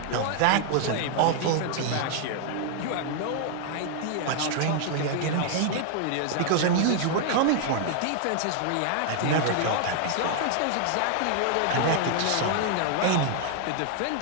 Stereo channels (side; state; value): both; different; correlation 0.00